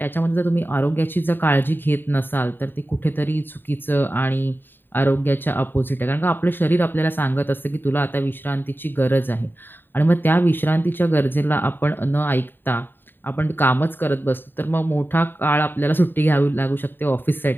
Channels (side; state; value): right; late; 0.095 ms